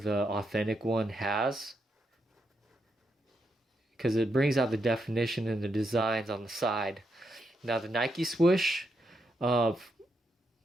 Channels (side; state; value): both; normal; correlation 0.82